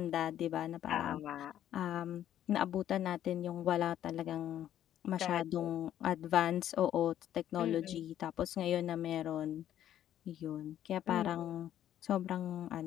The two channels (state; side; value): quieter; right; 11.3 dB